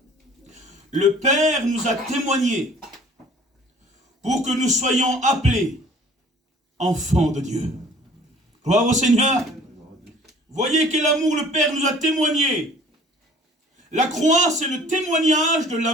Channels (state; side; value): normal; both; correlation 0.51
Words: le Père nous a témoigné pour que nous soyons appelés enfants de Dieu. Gloire au Seigneur. Voyez quel amour le Père nous a témoigné. La croix, c'est le témoignage de